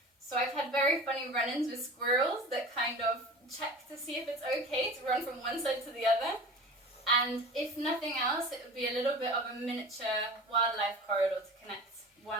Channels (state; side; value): normal; both; correlation 0.37